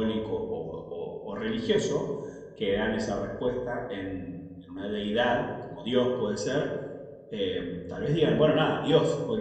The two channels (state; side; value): identical; both; correlation 1.00